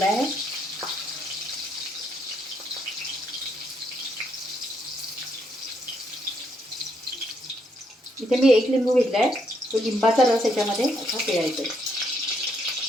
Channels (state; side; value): normal; both; correlation 0.74